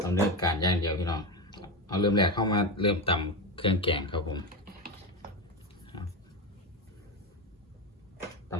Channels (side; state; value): both; normal; correlation 0.16